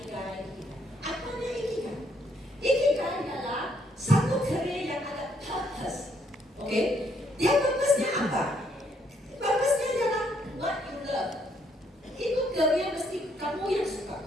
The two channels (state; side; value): normal; both; correlation 0.71